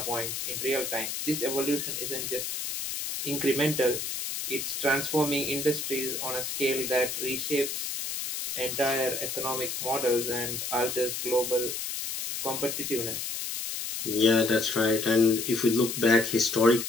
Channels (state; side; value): noise; left; hiss, 4 dB below the sound